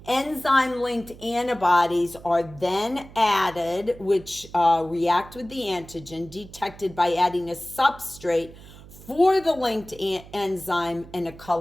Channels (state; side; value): noise; right; hum, 19 dB below the sound